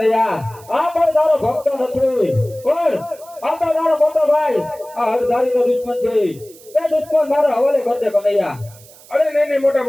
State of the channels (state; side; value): noise; right; hiss, 23 dB below the sound